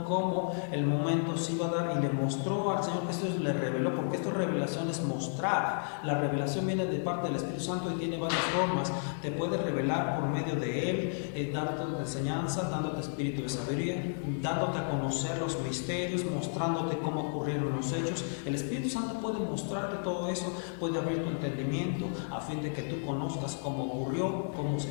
cómo el momento se iba a dar y le mostró al Señor Jesús, le reveló, porque esta revelación es mostrar. La revelación viene de parte del Espíritu Santo y tiene varias formas. Te puede revelar por medio de Él, dándote enseñanza, dándote espíritu de sabiduría, dándote a conocer los misterios, mostrándote cómo ocurrieron los hechos. El Espíritu Santo puede mostrarte todo eso, puede abrir tu entendimiento a fin de que tú conozcas cómo ocurrió, cómo se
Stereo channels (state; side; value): silent; right; digital silence